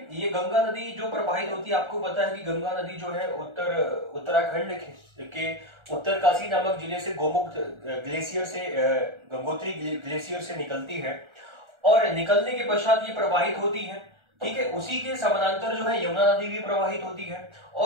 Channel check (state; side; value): late; left; 1.4 ms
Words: ये गंगा नदी जो प्रवाहित होती है, आपको पता है कि गंगा नदी जो है उत्तराखंड के उत्तरकाशी नामक जिले से गोमुख ग्लेशियर से, गंगोत्री ग्लेशियर से निकलती है और निकलने के पश्चात ये प्रवाहित होती है। ठीक है, उसी के समानांतर जो है यमुना नदी भी प्रवाहित होती है